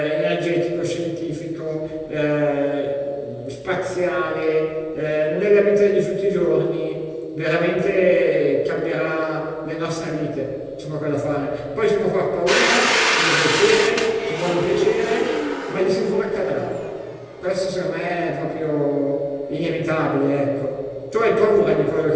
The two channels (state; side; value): identical; both; correlation 1.00